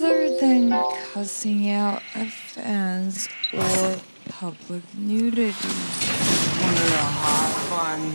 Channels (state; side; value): inverted; both; correlation -1.00